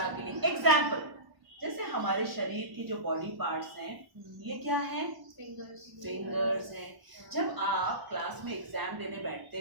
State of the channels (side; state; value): left; late; 1.0 ms